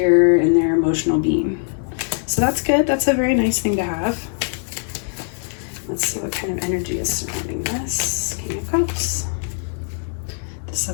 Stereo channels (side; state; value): right; silent; 65 dB below the other